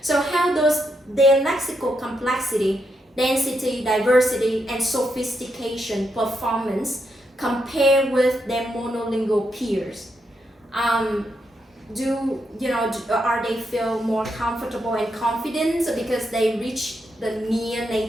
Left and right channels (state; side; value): normal; both; correlation 0.81